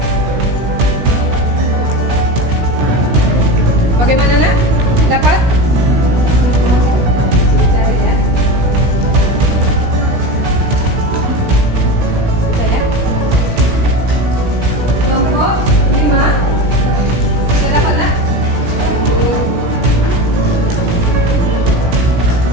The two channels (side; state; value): left; late; 17 ms